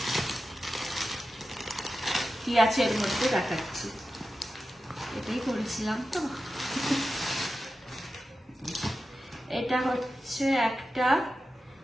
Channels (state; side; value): normal; both; correlation 0.92